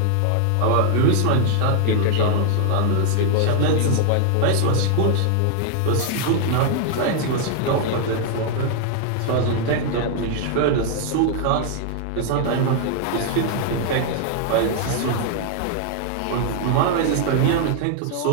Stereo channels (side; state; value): both; different; correlation 0.00